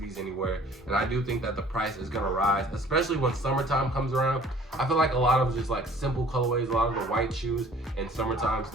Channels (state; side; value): normal; both; correlation 0.52